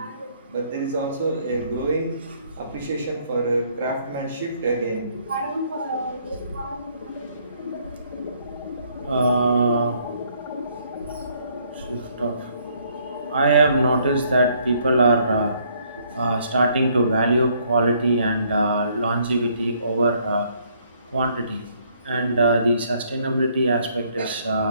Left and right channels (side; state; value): both; inverted; correlation -0.66